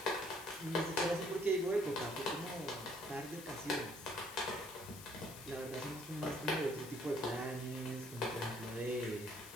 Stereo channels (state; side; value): noise; left; hiss, 14 dB below the sound